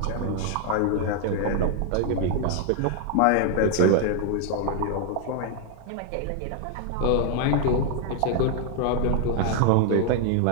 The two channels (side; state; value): both; different; correlation 0.00